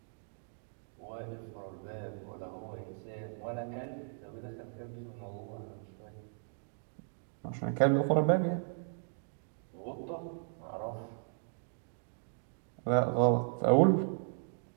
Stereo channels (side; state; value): left; silent; digital silence